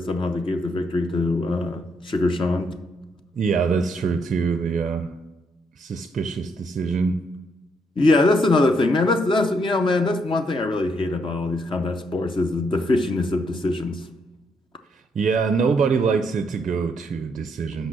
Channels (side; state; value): both; normal; correlation 0.74